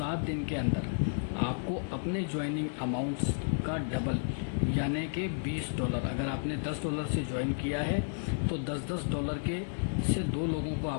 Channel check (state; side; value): silent; right; 56 dB below the other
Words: दिन के अंदर आपको अपने ज्वाइनिंग अमाउंट्स का डबल यानी कि $20, अगर आपने $10 से ज्वाइन किया है तो $10 के से 2 लोगों को